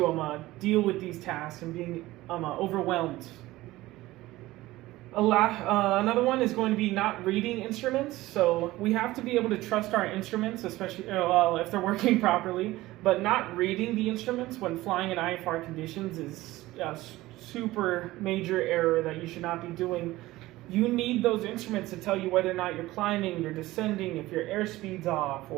deal with these tasks and being overwhelmed. Another one is going to be not reading instruments. So we have to be able to trust our instruments, especially if they're working properly. But not reading the instruments when flying in IFR conditions is a super major error that you should not be doing. You need those instruments to tell you whether or not you're climbing, you're descending, if your airspeed's off,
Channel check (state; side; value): quieter; left; 17.8 dB